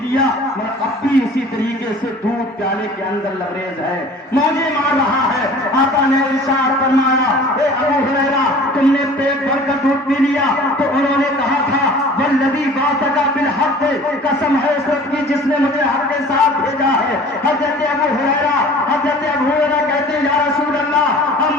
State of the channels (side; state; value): both; normal; correlation 0.45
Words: لیا، مگر اب بھی اسی طریقے سے دودھ پیالے کے اندر لبریز ہے، موجے مار رہا ہے۔ آقا نے ارشاد فرمایا اے ابو ہریرہ تم نے پیٹ بھر کر دودھ پی لیا تو انہوں نے کہا تھا والذی بعثک بالحق، قسم ہے اس وقت کی جس نے مجھے حق کے ساتھ بھیجا ہے۔ حضرت ابو ہریرہ کہتے ہیں یا رسول اللہ اب